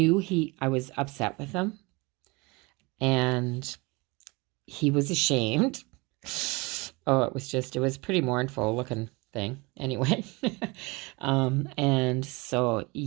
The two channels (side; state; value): left; quieter; 26.0 dB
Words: I was upset with him, and he was ashamed. Oh, it was pretty mournful looking thing anyway. And so